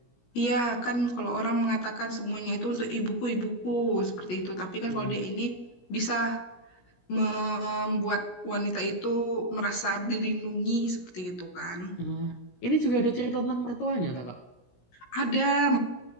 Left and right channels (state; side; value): late; right; 17 ms